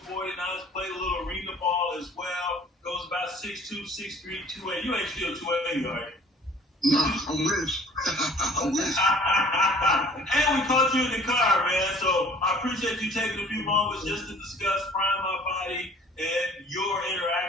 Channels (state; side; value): normal; both; correlation 0.51